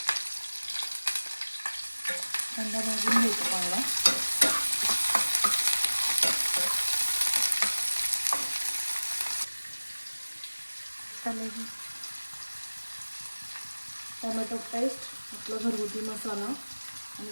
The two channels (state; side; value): inverted; both; correlation -1.00